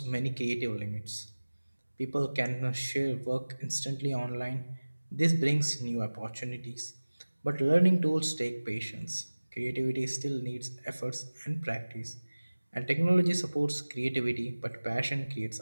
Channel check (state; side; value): inverted; both; correlation -1.00